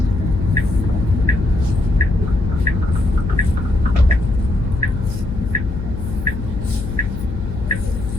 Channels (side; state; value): left; noise; hum, 7 dB below the sound